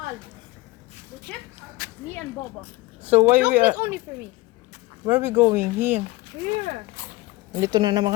The chips? Me and Boba. So why we Chocolate only for me. where we going here? Here. Dito na naman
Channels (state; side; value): quieter; right; 20.4 dB